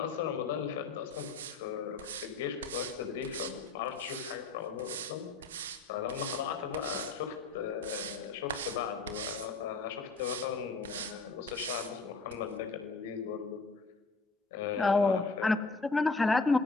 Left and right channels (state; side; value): quieter; right; 3.9 dB